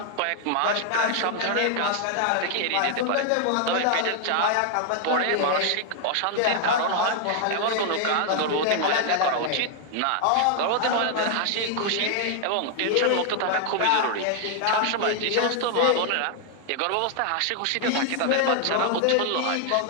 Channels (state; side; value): different; both; correlation 0.00